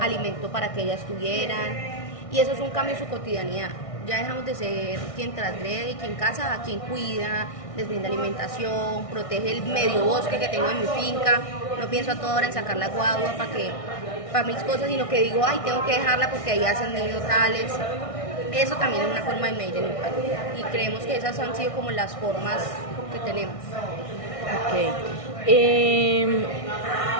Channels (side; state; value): right; late; 1.6 ms